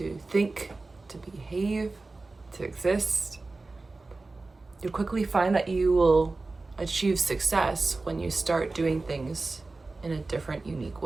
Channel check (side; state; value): left; quieter; 3.5 dB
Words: think, to behave, to exist. You'll quickly find that you will achieve success when you start doing things in a different, unique